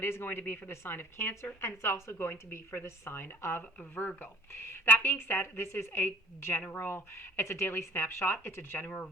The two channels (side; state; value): both; normal; correlation 0.52